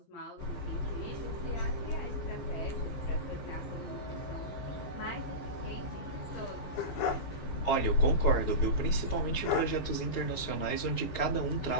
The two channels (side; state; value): right; late; 15 ms